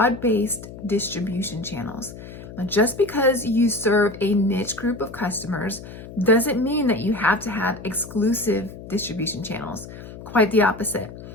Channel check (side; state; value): left; noise; hum, 14 dB below the sound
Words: distribution channels. Now, just because you serve a niche group of customers doesn't mean that you have to have exclusive distribution channels. Quite the opposite.